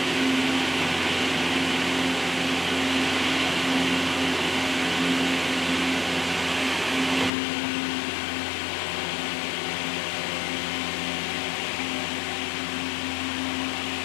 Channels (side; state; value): right; drops out; at 7.3 s